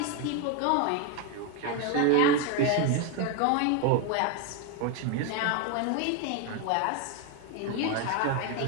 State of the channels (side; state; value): both; different; correlation 0.01